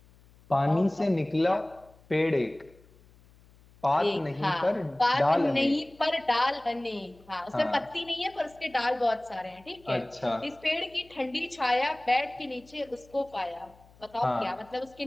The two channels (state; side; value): noise; left; hum, 27 dB below the sound